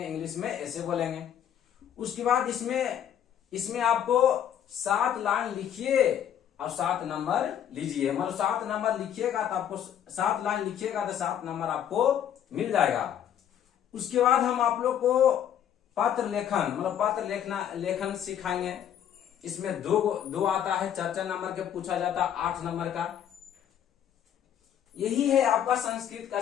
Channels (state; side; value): quieter; right; 9.7 dB